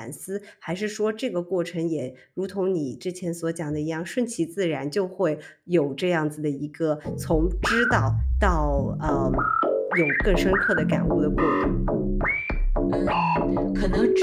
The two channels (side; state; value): both; identical; correlation 1.00